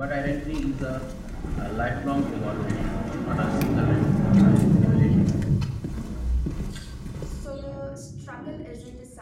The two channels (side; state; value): both; identical; correlation 1.00